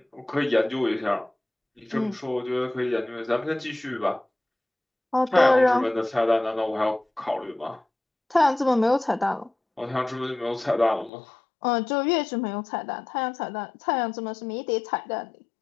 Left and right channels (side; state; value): right; drops out; at 11.1 s